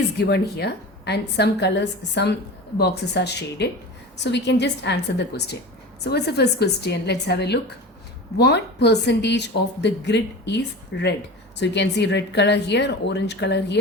given here and some colors, some boxes are shaded. So we can just answer the question. So what's the first question? Let's have a look. What percentage of the grid is red? So you can see red color here, orange color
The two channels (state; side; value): normal; both; correlation 0.32